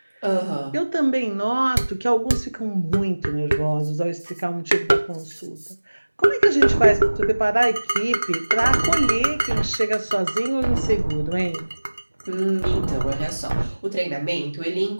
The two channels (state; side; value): inverted; both; correlation -1.00